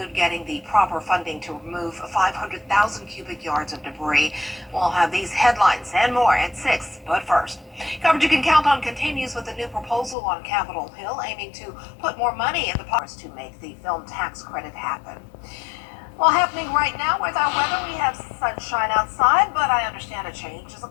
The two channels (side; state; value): right; drops out; at 10.2 s